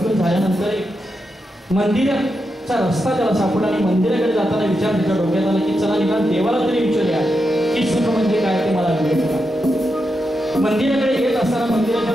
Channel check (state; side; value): normal; both; correlation 0.86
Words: झाल्यानंतर मंदिराचा रस्ता त्याला सापडला आणि मंदिराकडे जाताना विचार त्याच्या डोक्यात आला की चला निदान देवाला तरी विचारूया की सुख म्हणजे काय ते मला मिळेल का. मंदिराकडे येत असताना मंदिराच्या